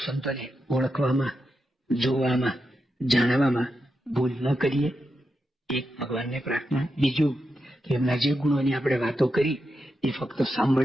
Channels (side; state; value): both; normal; correlation 0.87